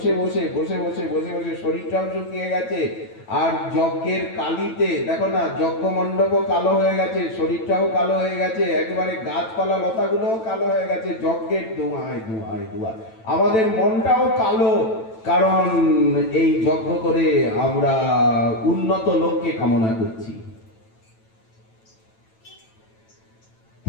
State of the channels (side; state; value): right; late; 9.0 ms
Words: বসে বসে বসে বসে বসে শরীরটাও শুকিয়ে গেছে, আর যজ্ঞের কালিতে দেখো না, যজ্ঞ মণ্ডপও কালো হয়ে গেছে, শরীরটাও কালো হয়ে গেছে, একেবারে গাছপালা লতাগুলোও কালো হয়ে গেছে যজ্ঞের ধোঁয়ায় ধোঁয়ায় ধোঁয়া। আমাদের মনটাও কালো, কারণ এই যজ্ঞ করে আমরা উন্নত লোককে কামনা করছি।